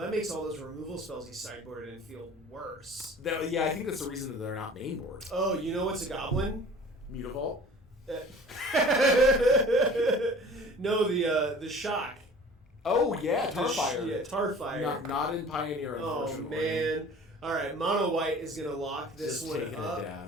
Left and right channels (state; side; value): normal; both; correlation 0.45